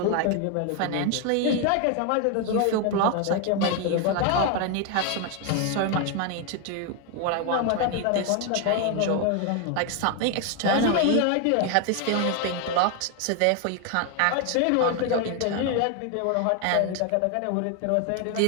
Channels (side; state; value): both; different; correlation 0.01